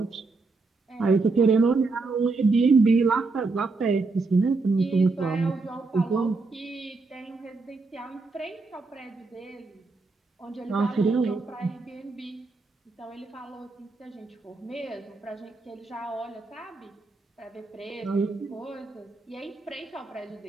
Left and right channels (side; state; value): left; quieter; 3.8 dB